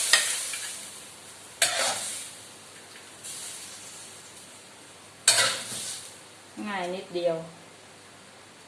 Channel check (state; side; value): identical; both; correlation 1.00